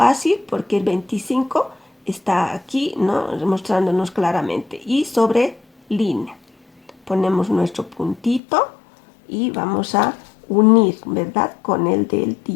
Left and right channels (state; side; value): drops out; right; at 8.4 s